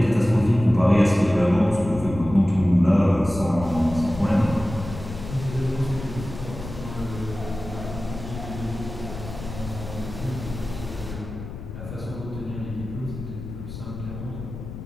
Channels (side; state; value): left; noise; rumble, 10 dB below the sound